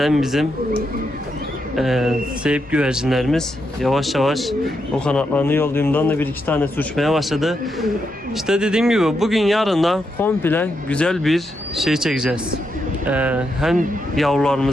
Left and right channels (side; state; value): both; normal; correlation 0.82